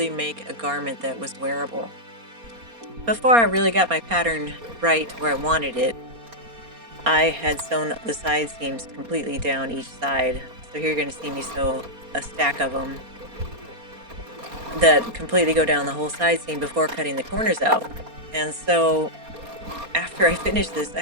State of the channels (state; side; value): late; left; 4.3 ms